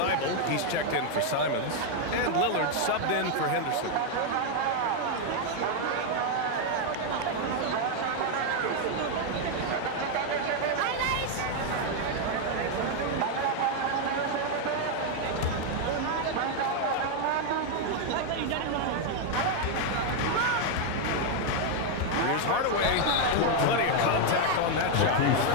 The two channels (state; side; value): different; both; correlation 0.01